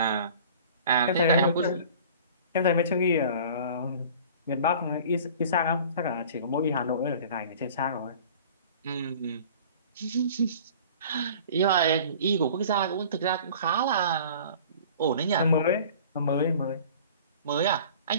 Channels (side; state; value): both; inverted; correlation -0.45